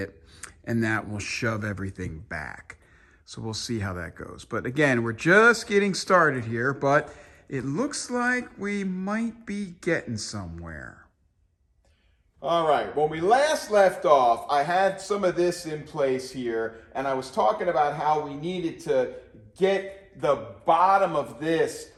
and that will shove everything back. So we'll see how that goes. But again, we're just getting started here, but it looks like we might be getting somewhere. All right, when we last left off, I had some of this in place here, and I was talking about how we needed to get the bottom of this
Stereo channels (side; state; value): both; identical; correlation 1.00